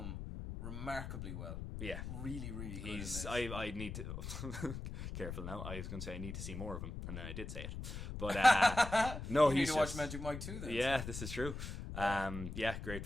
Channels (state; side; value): noise; left; rumble, 7 dB below the sound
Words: remarkably well. Yeah, really, really good. In this. I need to careful now. I was going to say I need to see more of him, and then I did say it. But no, you need to watch Magic Mike 2 then. Yeah, this is true. Great